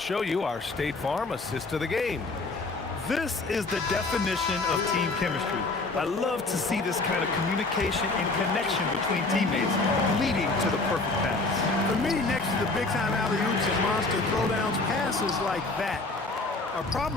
you our State Farm assist to the game. This is the definition of team chemistry. I love to see this kind of communication and connection between teammates leading to the perfect pass. For me, next to the big-time alley-oops and monster throwdowns, passes like that are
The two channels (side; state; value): right; quieter; 3.4 dB